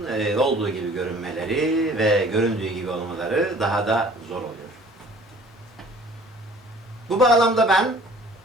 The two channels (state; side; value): normal; both; correlation 0.51